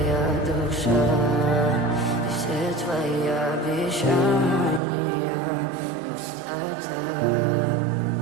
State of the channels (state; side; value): drops out; left; at 4.8 s